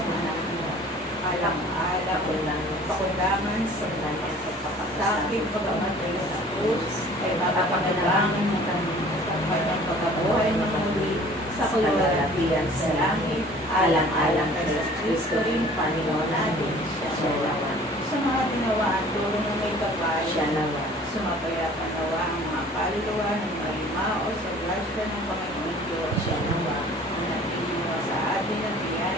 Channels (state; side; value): normal; both; correlation 0.49